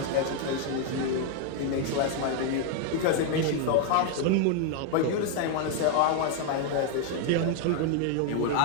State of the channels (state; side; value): different; both; correlation 0.00